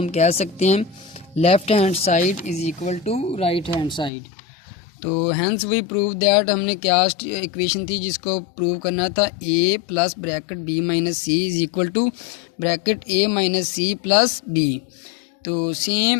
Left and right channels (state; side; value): drops out; right; at 4.1 s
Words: कह सकते हैं left hand side is equal to right hand side. तो हैंस वी प्रूव दैट, हमने क्या इक्वेशन थी जिसको प्रूव करना था, A plus bracket B minus C is equal to bracket A minus C plus B. तो